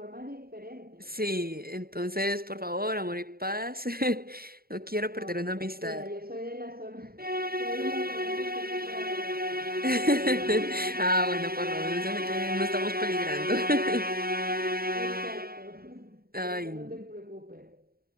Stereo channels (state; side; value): late; left; 0.44 ms